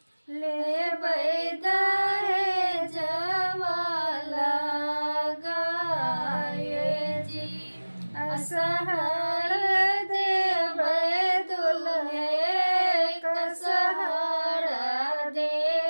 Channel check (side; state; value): both; inverted; correlation -1.00